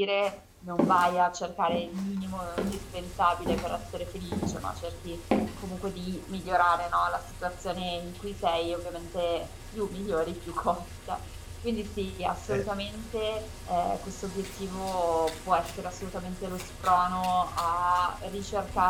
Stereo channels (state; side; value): identical; both; correlation 1.00